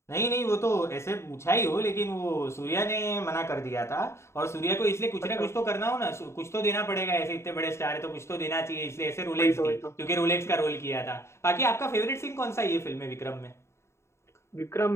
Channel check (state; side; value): late; right; 0.13 ms